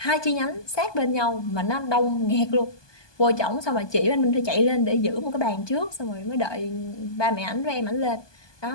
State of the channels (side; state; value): right; late; 1.2 ms